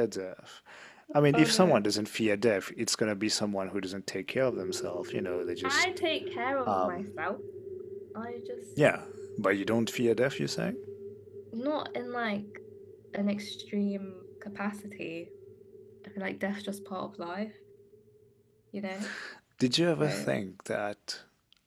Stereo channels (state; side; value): identical; both; correlation 1.00